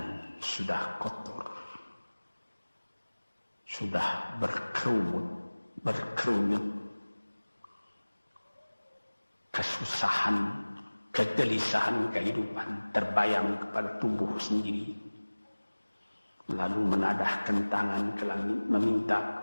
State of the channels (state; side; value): inverted; both; correlation -1.00